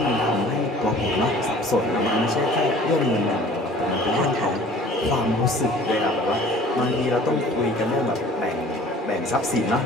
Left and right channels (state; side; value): normal; both; correlation 0.48